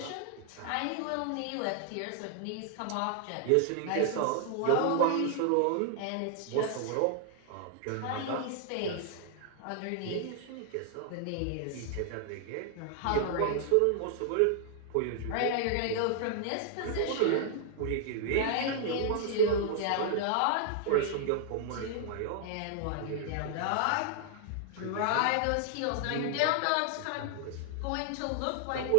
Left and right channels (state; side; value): different; both; correlation 0.00